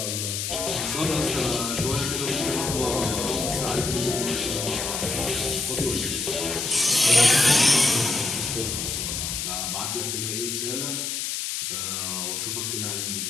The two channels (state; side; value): noise; left; hiss, 2 dB below the sound